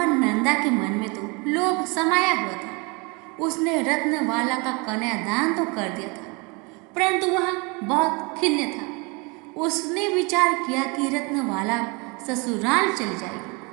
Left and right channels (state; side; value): quieter; left; 29.6 dB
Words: नंदा के मन में तो लोभ समाया हुआ था। उसने रत्नवाला का कन्यादान तो कर दिया था, परंतु वह बहुत खिन्न था। उसने विचार किया कि रत्नवाला ससुराल चली